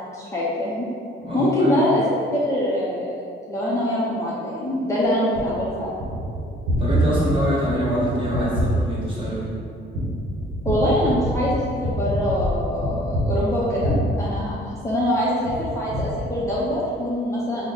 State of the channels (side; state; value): both; normal; correlation 0.54